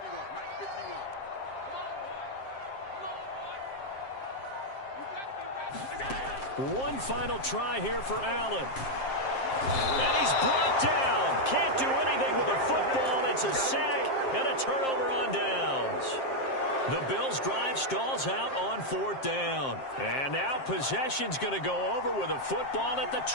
One final try here for Allen. And he's brought down. Can't do anything with a football. It's a sack and a turnover on downs. The Bills' drive stalls out on 4th down. And now possession's going to go over with a football at the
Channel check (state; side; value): late; right; 7.5 ms